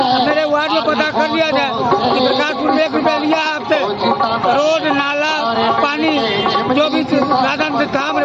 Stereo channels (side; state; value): both; identical; correlation 1.00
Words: मेरे वार्ड में पता कर लिया जाए कि प्रकाशपुर में 1 रुपया लिया है आपसे, रोड नाला पानी जो भी साधन से था